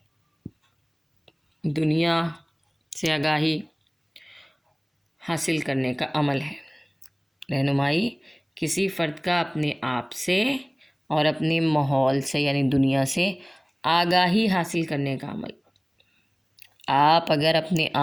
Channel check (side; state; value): both; identical; correlation 1.00